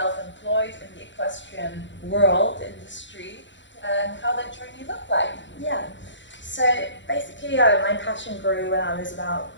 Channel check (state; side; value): late; right; 0.54 ms